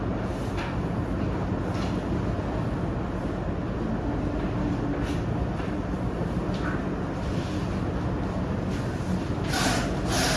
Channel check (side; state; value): both; identical; correlation 1.00